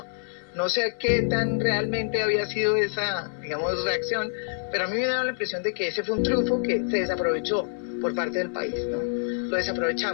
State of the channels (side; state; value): right; silent; 56 dB below the other